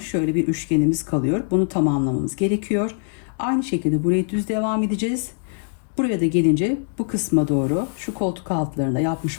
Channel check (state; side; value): silent; right; 62 dB below the other